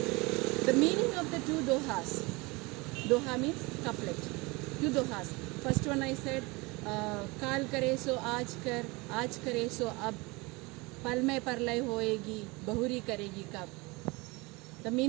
The meaning of the two dohas. Doha means couplet. Two dohas. First one I said, काल करे सो आज करे सो अब, पल में परलय होएगी, बहुरी करेगी कब. The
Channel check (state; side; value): quieter; left; 25.2 dB